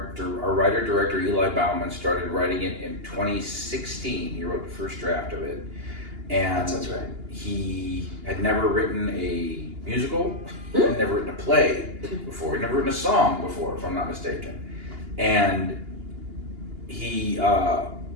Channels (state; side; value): late; left; 2.8 ms